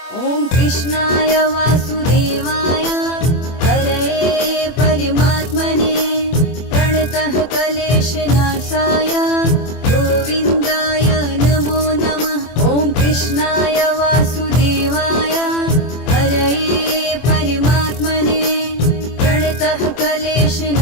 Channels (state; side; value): late; right; 24 ms